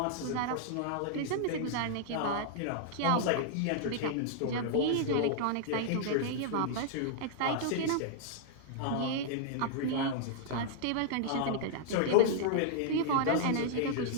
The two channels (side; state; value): both; different; correlation -0.01